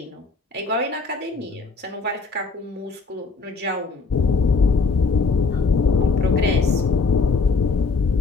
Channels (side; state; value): right; quieter; 4.3 dB